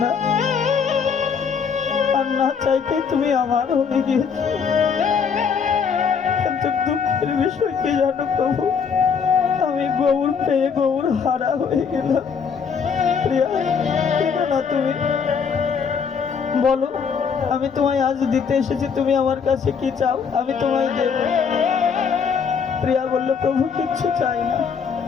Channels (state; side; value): quieter; right; 6.3 dB